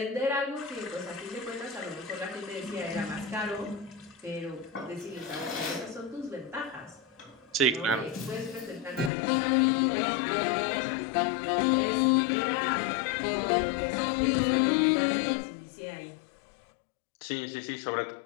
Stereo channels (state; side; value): drops out; right; at 9.1 s